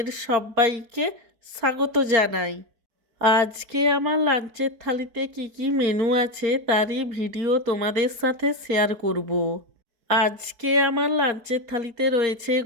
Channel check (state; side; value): late; left; 4.5 ms